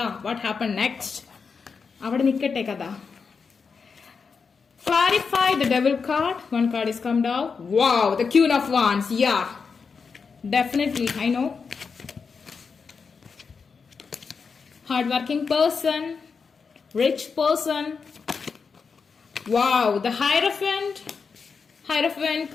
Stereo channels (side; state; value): right; quieter; 5.4 dB